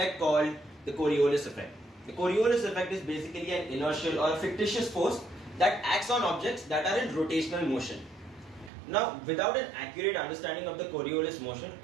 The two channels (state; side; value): drops out; left; at 8.7 s